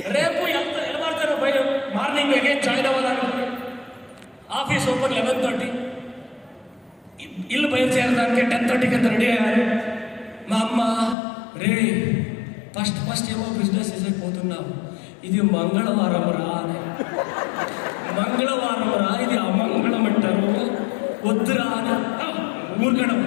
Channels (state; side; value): drops out; right; at 11.2 s